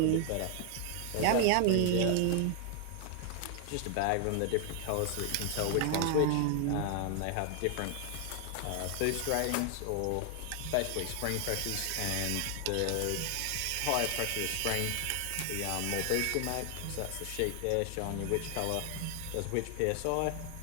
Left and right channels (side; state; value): both; different; correlation 0.00